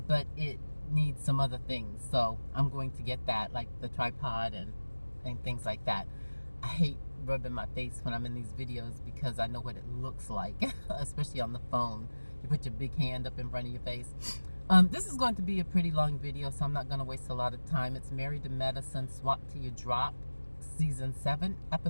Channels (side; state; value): both; inverted; correlation -1.00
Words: it needs some other things. So I'm going to get that, like the tripod and things like that. I hate rubbing my face when I'm in these videos because I know what it looks like, especially on the phone. You put your big hand up in front of your face. This is going to be a pretty long video, so I'm not going to waste a lot of time. It's Married to Medicine, Swap Till You Drop, Season 7,